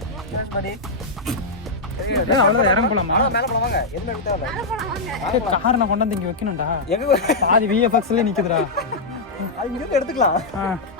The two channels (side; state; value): right; quieter; 3.3 dB